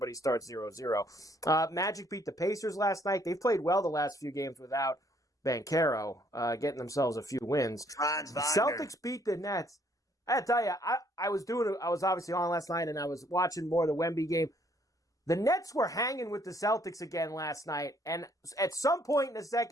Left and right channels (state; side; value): normal; both; correlation 0.66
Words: starts 0-0. Magic beat the Pacers last night. They've played well the last few games without Banchero, getting themselves a few wins. Celtics beat the Nets. I tell you, I was obviously on last night and I was watching more of the Wemby game. The Nets were hanging with the Celtics again last night, and at some point in the